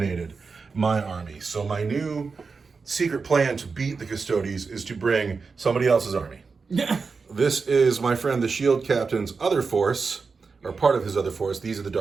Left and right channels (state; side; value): quieter; left; 4.8 dB